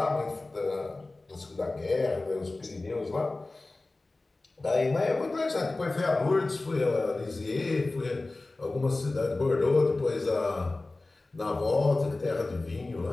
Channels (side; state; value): right; quieter; 3.1 dB